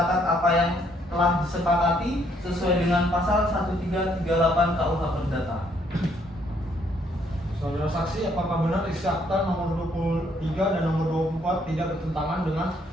apa yang telah disepakati sesuai dengan pasal 1338 KUH Perdata. Saudara saksi, apakah benar isi akta nomor 23 dan nomor 24 tidak bertentangan dengan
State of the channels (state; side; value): normal; both; correlation 0.68